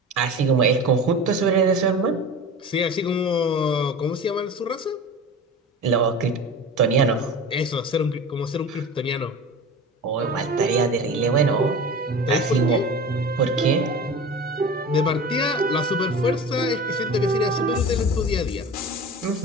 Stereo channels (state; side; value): normal; both; correlation 0.34